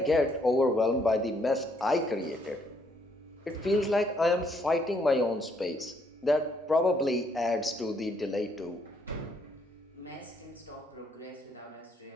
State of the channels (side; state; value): both; normal; correlation 0.70